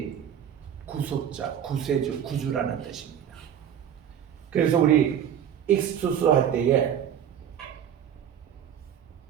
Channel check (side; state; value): left; quieter; 9.3 dB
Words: 구속자, 구세주, 구주라는 뜻입니다. 그래서 우리 익스투스 할 때에